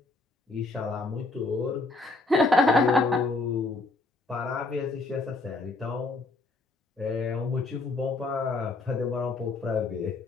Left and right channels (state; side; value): quieter; right; 3.4 dB